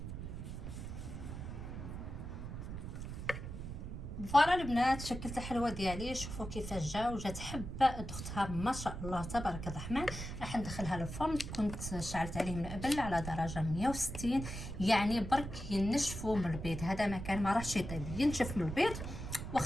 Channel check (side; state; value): right; noise; rumble, 7 dB below the sound